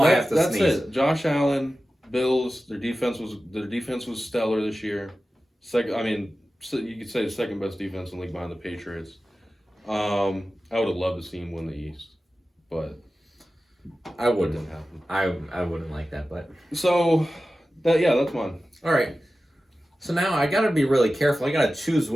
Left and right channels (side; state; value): both; normal; correlation 0.94